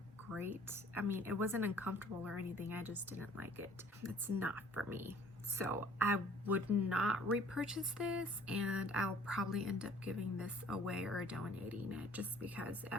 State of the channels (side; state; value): both; normal; correlation 0.54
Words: great. I mean, it wasn't uncomfortable or anything, I just didn't like it. It's not for me. So I would not repurchase this, and I'll probably end up giving this away or donating it, just because